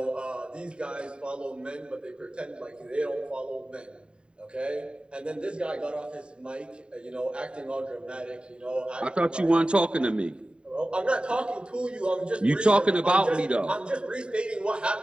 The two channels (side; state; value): left; late; 0.052 ms